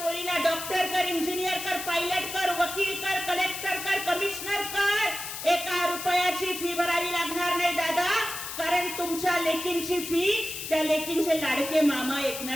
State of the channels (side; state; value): left; noise; hiss, 7 dB below the sound